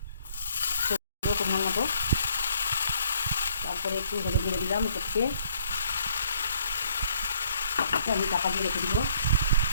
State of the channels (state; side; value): inverted; both; correlation -0.63